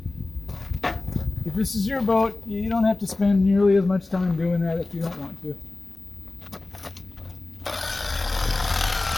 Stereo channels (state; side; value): quieter; right; 3.0 dB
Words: If this is your boat, you don't have to spend nearly as much time doing that if you don't want to.